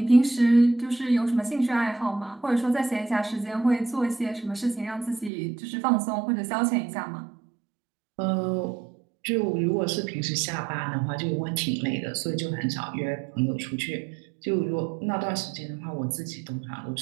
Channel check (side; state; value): left; drops out; at 5.3 s